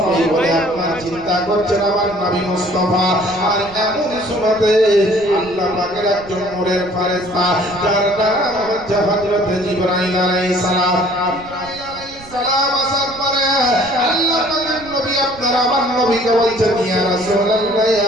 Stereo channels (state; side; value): noise; right; rumble, 19 dB below the sound